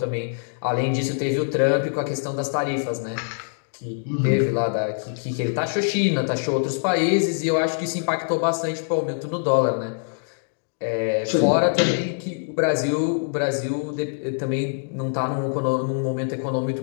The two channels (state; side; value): silent; right; digital silence